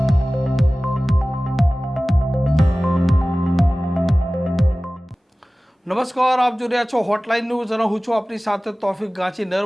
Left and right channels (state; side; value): normal; both; correlation 0.97